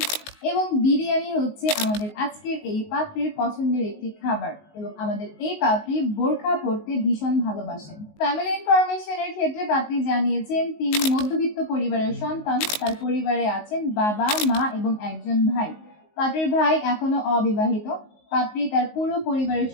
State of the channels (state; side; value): late; right; 19 ms